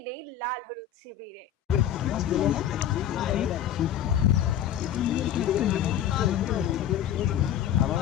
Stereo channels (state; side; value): quieter; right; 10.1 dB